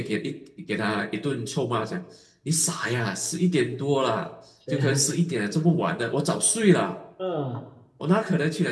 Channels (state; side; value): identical; both; correlation 1.00